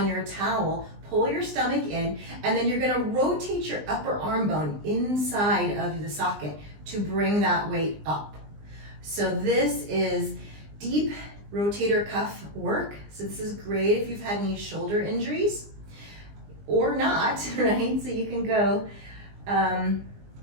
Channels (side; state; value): left; late; 20 ms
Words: your towel, pull your stomach in, and then you're gonna rotate your upper arm bone inside of the socket to bring that weight up. So this is deep rotator cuff work. So this is great if you've had any shoulder injuries or not, right? So you can go